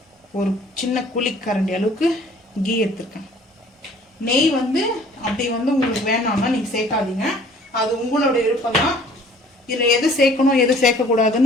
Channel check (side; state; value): both; normal; correlation 0.54